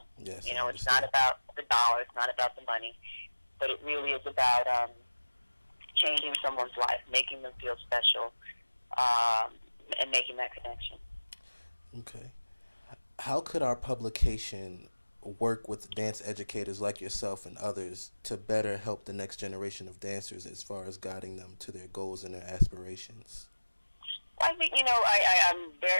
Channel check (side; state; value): both; inverted; correlation -1.00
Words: Yes, It's not about the dollar, it's not about the money, but it really is about changing someone's life, making them feel special, and making that connection. Okay. How could our publication work with dance educators like yourself and others to better help the next generation of dancers as far as guiding them to their goals and their aspirations? I think, I'm